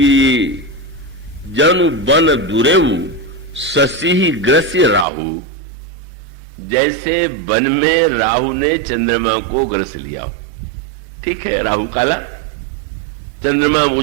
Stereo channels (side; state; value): left; drops out; at 5.1 s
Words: जनु बन दुरेऊ शशि ग्रस्य राहु, जैसे वन में राहु ने चंद्रमा को ग्रस लिया हो। ठीक है, राहु काला, चंद्रमा